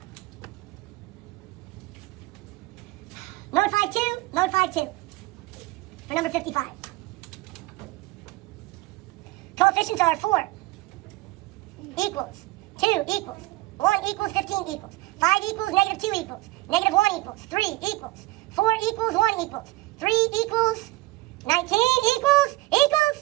Mode 5 2 for number 55. Coefficients are 4 equals, 2 equals, 1 equals, 15 equals, 5 equals, negative 2 equals, negative 1 equals, 3 equals, 4 equals, 1 equals, 3 equals, 19 equals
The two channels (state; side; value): quieter; left; 20.1 dB